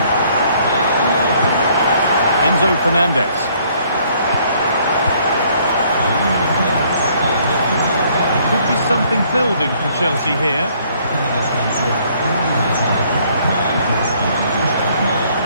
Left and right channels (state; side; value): inverted; both; correlation -0.63